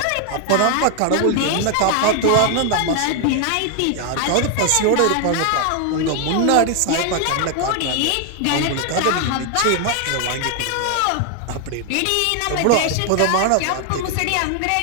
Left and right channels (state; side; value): different; both; correlation 0.01